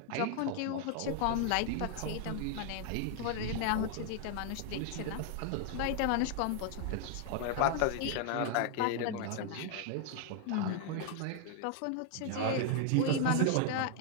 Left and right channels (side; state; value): both; different; correlation 0.00